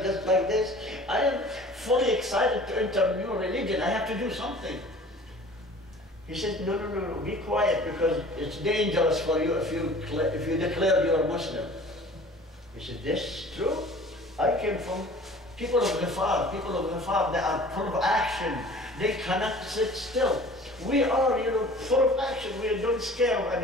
just like this. I am fully excited to enter a new religion. I have to do something. He said, no, be quiet because it's dangerous for you if you declare you're a Muslim. He said, this is true. I came from people of Ghifar. People of Ghifar, they are full of action. They cannot sit still. We are, full of action. We don't scare of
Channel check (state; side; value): normal; both; correlation 0.46